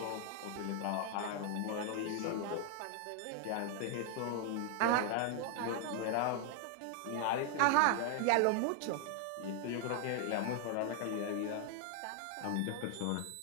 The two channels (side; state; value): both; different; correlation 0.00